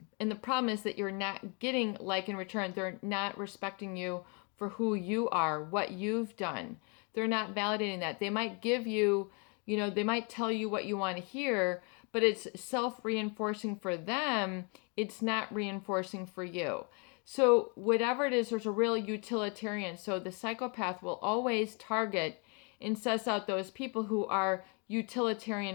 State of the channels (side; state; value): right; quieter; 34.8 dB